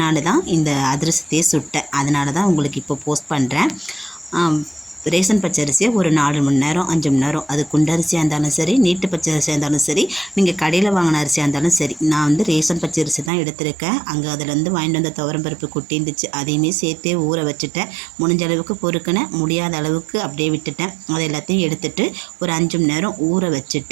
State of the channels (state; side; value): drops out; left; at 13.3 s